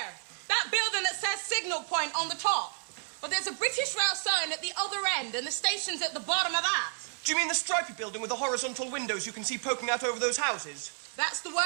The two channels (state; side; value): silent; left; 57 dB below the other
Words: That building that says Signal Point on the top. Well, there's a British Rail sign at the other end, and the station's at the bottom of that. Do you mean the stripy building with the horizontal windows you can see poking out over those houses? That's the